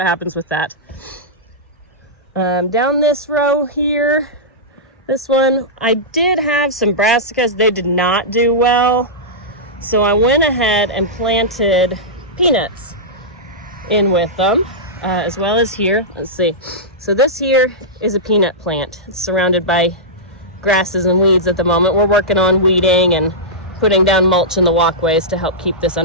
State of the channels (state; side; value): normal; both; correlation -0.13